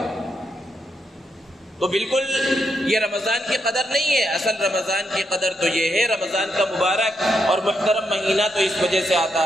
تو بالکل یہ رمضان کی قدر نہیں ہے، اصل رمضان کی قدر تو یہ ہے، رمضان کا مبارک اور محترم مہینہ تو اس وجہ سے آتا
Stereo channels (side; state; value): both; normal; correlation 0.81